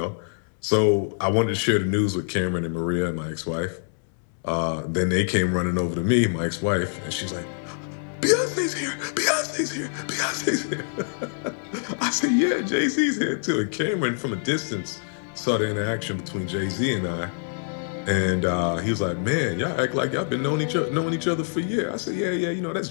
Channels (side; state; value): right; silent; 62 dB below the other